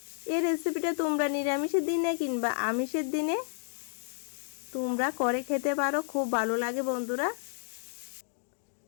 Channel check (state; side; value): silent; right; digital silence